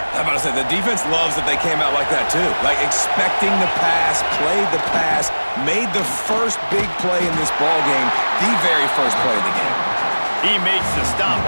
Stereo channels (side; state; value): both; inverted; correlation -1.00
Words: I'm about to say, the defense loves that they came out like that, too. Like, expecting the pass, played the pass, made the first big play in this ball game, the very first play of the game. He makes the stop